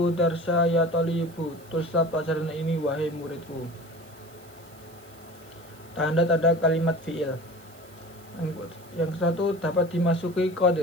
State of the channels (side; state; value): right; noise; hiss, 25 dB below the sound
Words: darsa ya talibu, tulislah pelajaran ini wahai muridku. Tanda-tanda kalimat fiil. Yang satu, dapat dimasuki